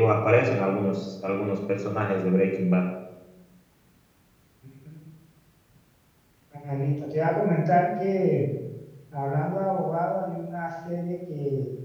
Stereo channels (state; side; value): identical; both; correlation 1.00